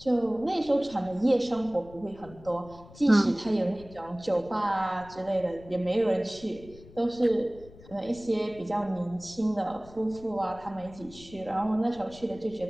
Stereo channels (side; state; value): left; noise; rumble, 20 dB below the sound